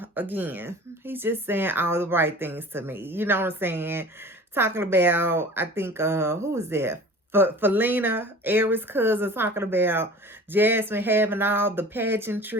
he's just saying all the right things to me. You know what I'm saying? Talking about, I think who was that? Felina, Aries' cousin, talking about Jasmine having all the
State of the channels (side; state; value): both; normal; correlation 0.41